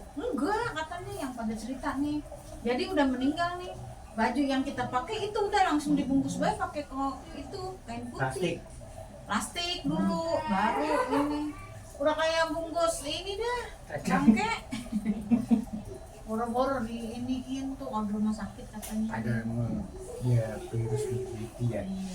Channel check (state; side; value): identical; both; correlation 1.00